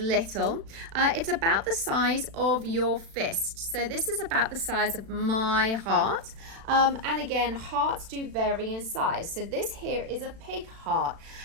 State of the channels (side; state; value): left; late; 36 ms